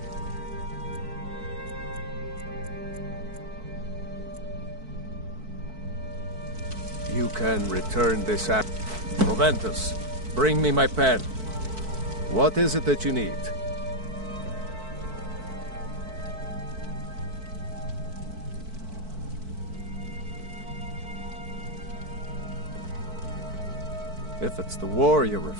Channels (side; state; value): left; late; 4.5 ms